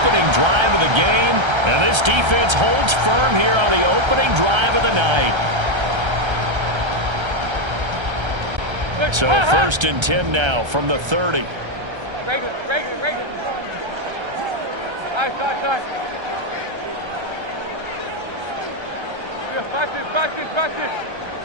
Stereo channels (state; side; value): late; left; 1.3 ms